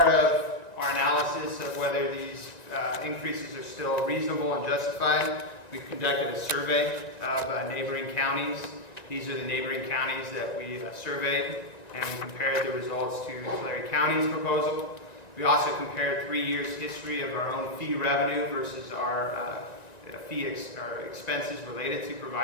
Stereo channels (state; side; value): late; right; 1.9 ms